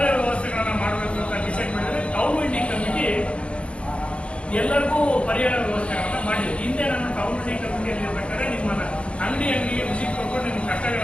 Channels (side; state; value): right; late; 0.059 ms